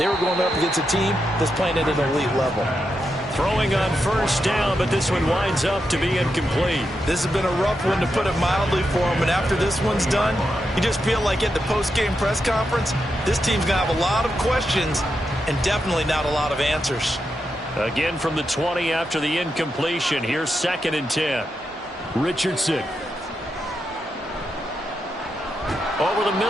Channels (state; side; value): normal; both; correlation 0.85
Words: were going up against a team that's playing at an elite level. Throwing on 1st down, but this one winds up to be incomplete. This has been a rough one, to put it mildly, for him. And after this one's done, you just feel like at the post-game press conference, this team's going to have a lot of questions and definitely not a lot of answers. Again from the 20 after the incompletion. Here's 2nd and 10. Richardson. Over the